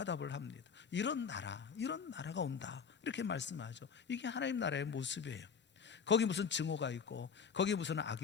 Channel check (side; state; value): right; quieter; 6.3 dB